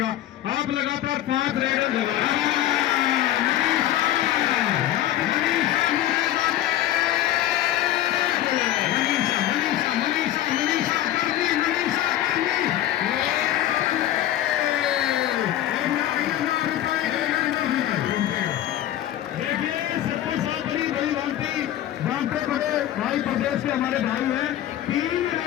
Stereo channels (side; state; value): right; quieter; 12.9 dB